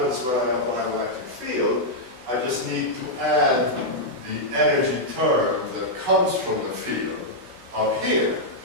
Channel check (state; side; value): late; left; 16 ms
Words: when I apply an electric field, I just need to add the energy term that comes from the field up here,